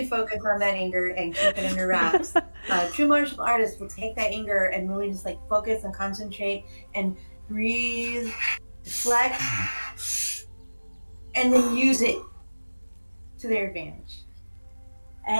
focus on that anger and keep it under wraps. True martial artists will take that anger and really just like focus and concentrate and breathe, deflect, and then use it to their advantage.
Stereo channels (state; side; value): inverted; both; correlation -1.00